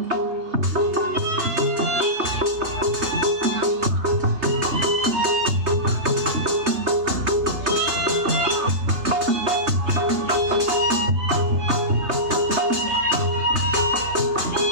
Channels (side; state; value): left; late; 3.3 ms